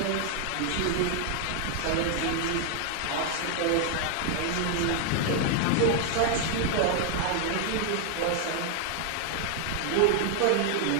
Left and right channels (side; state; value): both; different; correlation 0.00